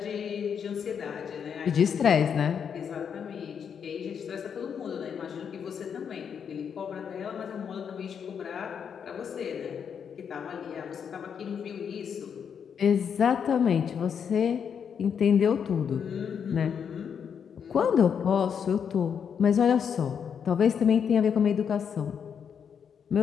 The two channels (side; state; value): right; quieter; 7.4 dB